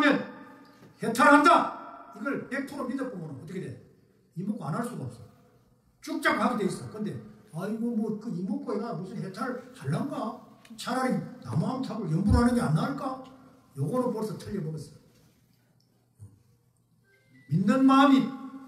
해탈한다. 이걸 100% 믿어보면 어떻게 돼? 이목구 안 할 수가 없어. 쭉쫙 가게 돼 있어. 근데 아이고 뭐 그 이목구가 무슨 해탈을 할란가? 차라리 나무암탑을 연부를 하는 게 안 나을까? 요거는 벌써 틀려먹었어. 믿는 마음이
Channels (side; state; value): both; identical; correlation 1.00